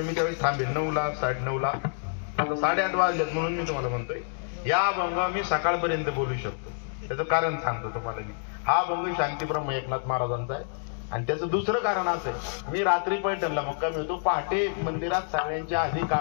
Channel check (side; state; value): right; silent; digital silence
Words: त्यावेळेस थांबेल 9ला 9:30ला. आता 8:30 वाजलेत म्हणून मी तुम्हाला म्हणतोय या भंग मी सकाळपर्यंत बोलू शकतो. त्याचं कारण सांगतो तुम्हाला मी. हा भंग शांतीब्रह्म एकनाथ महाराजांचा आहे. आणि त्याचं दुसरं कारण असं आहे, मी रात्री पैठणला मुक्काम होतो. पहाटे मंदिरात सगळ्यांच्या आधी